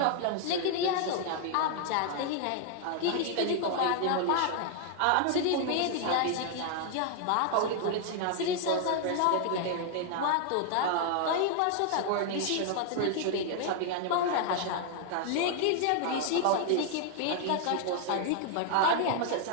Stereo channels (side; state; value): both; different; correlation 0.00